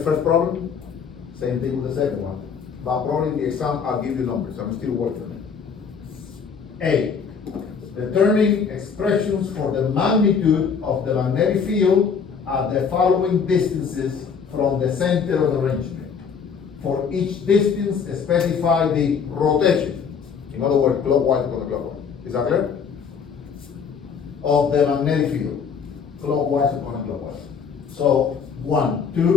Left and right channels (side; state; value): right; quieter; 6.3 dB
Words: first problem? Same thing with the second one. But probably in the exam, I'll give you numbers. I'm still working on it. A. Determine expressions for the magnitude of the magnetic field at the following distances from the center of the arrangement. For each distance, specify the rotation. In other words, clockwise or counterclockwise. Is that clear? Of the magnetic field. Clockwise or counterclockwise. So, 1,